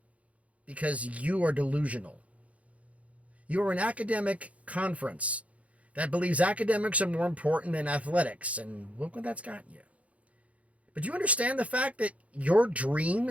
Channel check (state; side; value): late; left; 0.066 ms